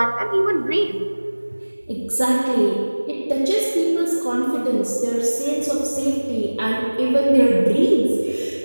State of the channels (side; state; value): both; inverted; correlation -1.00